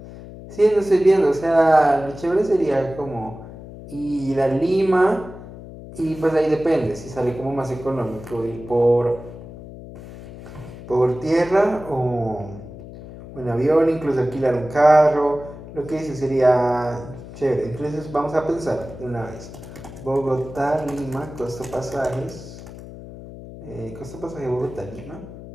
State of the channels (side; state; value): left; noise; hum, 14 dB below the sound